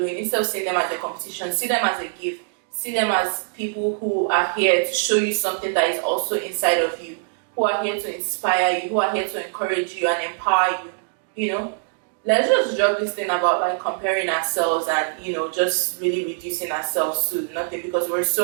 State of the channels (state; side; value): silent; left; digital silence